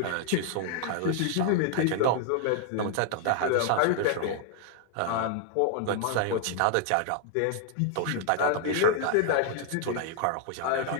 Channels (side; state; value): both; different; correlation 0.00